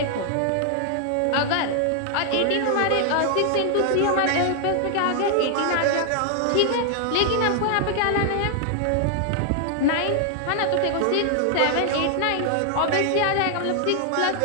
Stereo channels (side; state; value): both; different; correlation 0.00